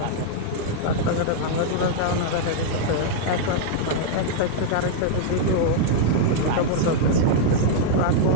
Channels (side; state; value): both; different; correlation -0.01